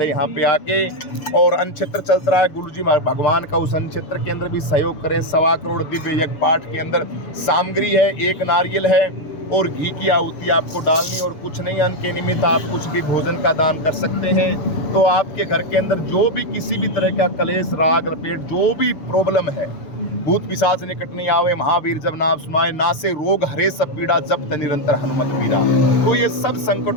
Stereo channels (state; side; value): late; right; 6.8 ms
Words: यहाँ पे आके। और अनक्षेत्र चल रहा है गुरु जी भगवान का, उस अनक्षेत्र के अंदर भी सहयोग करें। 1.25 करोड़ दिव्य यज्ञ पाठ के अंदर सामग्री है, 1 नारियल है और घी की आहुति आपको डालनी, और कुछ नहीं। अन्न के निमित्त आप कुछ भी भोजन का दान कर सकते हैं। तो आपके घर के अंदर जो भी किसी भी तरह का कलेश राग लपेट जो भी प्रॉब्लम है, भूत पिशाच निकट नहीं आवे, महावीर जब नाम सुनाए, ना से रोग हरे सब पीड़ा, जपत निरंतर हनुमत वीरा। तो ये सब